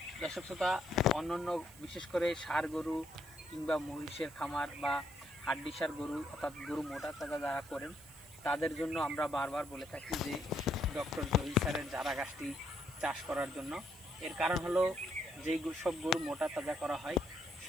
দর্শক শ্রোতা, অন্যান্য বিশেষ করে ষাঁড় গরু কিংবা মহিষের খামার বা হাড্ডিসার গরু অর্থাৎ গরু মোটা তাজা যারা করেন তাদের জন্য আমরা বারবার বলে থাকি যে ডক্টর জহির স্যারের জারা ঘাসটি চাষ করার জন্য। এর কারণ হলো যেই সব গরু মোটা তাজা করা হয়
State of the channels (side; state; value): right; noise; hiss, 21 dB below the sound